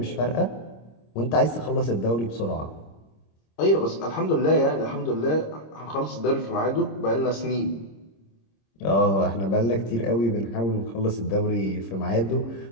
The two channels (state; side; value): late; right; 26 ms